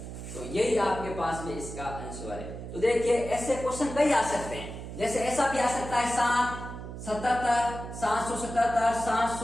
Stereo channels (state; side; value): noise; right; hum, 9 dB below the sound